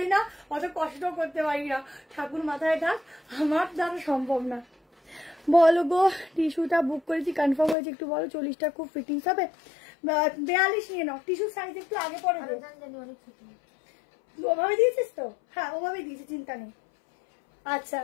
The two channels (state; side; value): drops out; right; at 7.8 s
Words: না, অত কষ্টও করতে পারি না, ঠাকুর মাথায় থাক, আমার দ্বারা সম্ভব না। বলো গো, টিস্যুটা বুক করেছি, কনফার্ম হয়েছে, একটু বলো 40টা খুব ফিটিংস হবে? 42 নিয়ে নাও, টিস্যু সাইজ একটু আগে পরে দেবো। ওভাবে দিয়েছিস তো? হ্যাঁ ওভাবে দিয়েছি, চিন্তা নেই। আচ্ছা